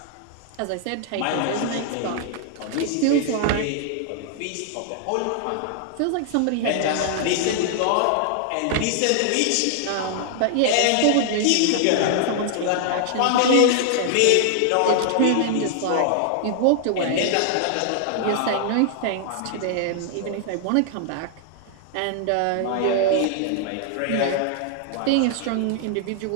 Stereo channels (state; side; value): different; both; correlation 0.00